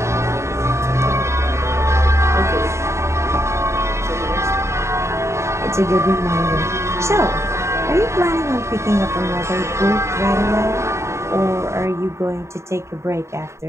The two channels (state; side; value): late; left; 0.14 ms